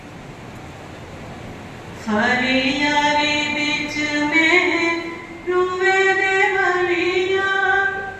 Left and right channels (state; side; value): identical; both; correlation 1.00